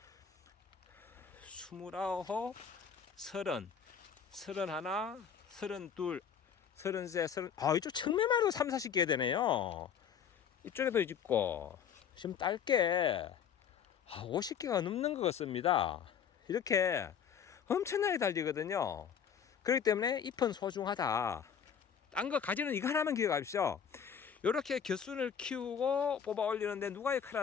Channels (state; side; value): quieter; right; 7.7 dB